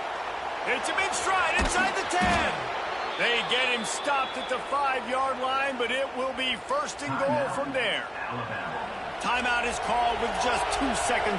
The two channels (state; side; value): identical; both; correlation 1.00